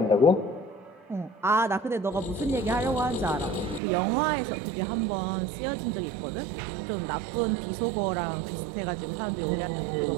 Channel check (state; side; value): drops out; left; at 3.8 s